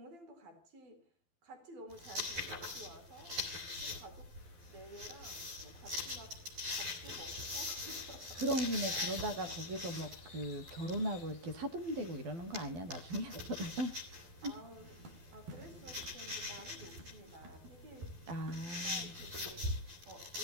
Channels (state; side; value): late; left; 12 ms